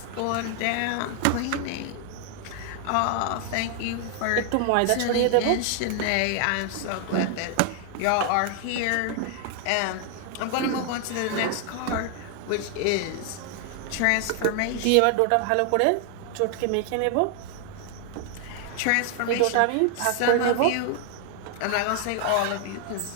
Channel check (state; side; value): different; both; correlation 0.00